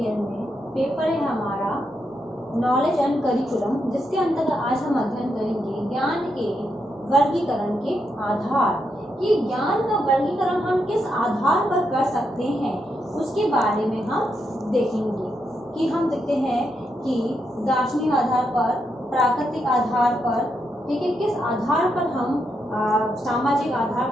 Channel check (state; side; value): normal; both; correlation 0.82